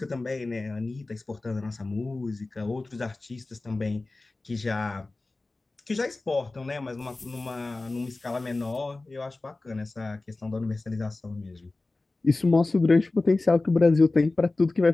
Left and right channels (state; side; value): quieter; right; 3.2 dB